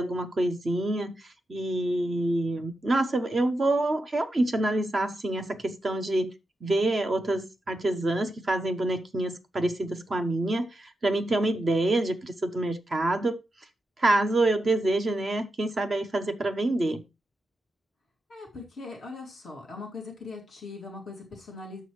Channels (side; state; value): both; normal; correlation 0.88